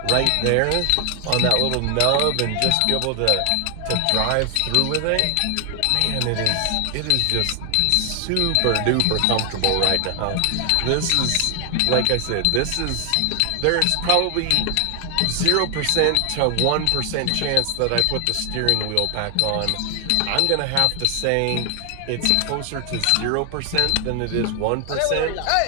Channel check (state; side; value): different; both; correlation 0.00